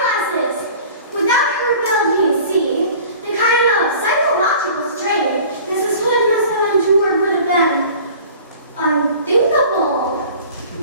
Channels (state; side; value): inverted; both; correlation -0.44